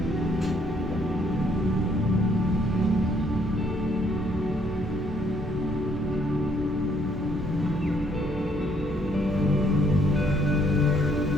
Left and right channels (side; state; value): both; normal; correlation 0.67